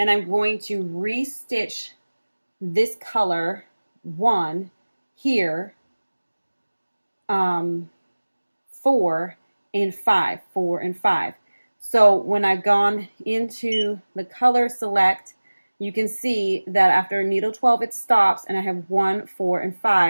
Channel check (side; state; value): both; inverted; correlation -1.00